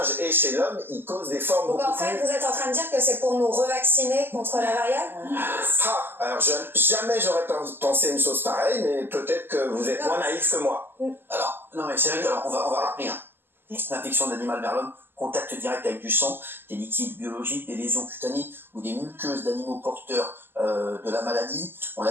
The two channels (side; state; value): left; late; 0.099 ms